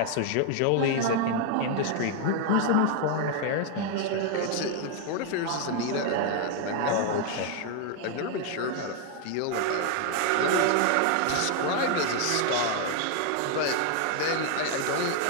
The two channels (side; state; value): both; different; correlation 0.00